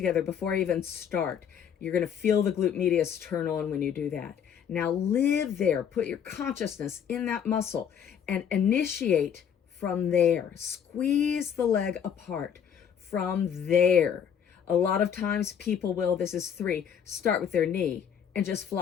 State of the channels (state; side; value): quieter; right; 8.2 dB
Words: before I even start. You're going to feel the glute medius turn on when you do that. Now live there. Put your consciousness in that muscle and initiate from there. Squeeze the leg apart from there. A lot of times people will, this is 3, start with their knee and just